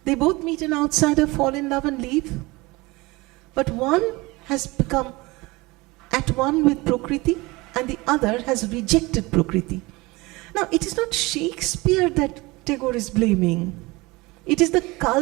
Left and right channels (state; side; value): quieter; left; 22.9 dB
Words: They both meet an outsider, fall in love and leave. But one has become at one with Prakriti and the other has rejected Prakriti. Now, it is not Shakespeare that Tagore is blaming. It is the